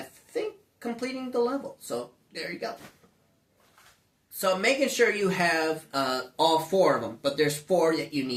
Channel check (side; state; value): both; identical; correlation 1.00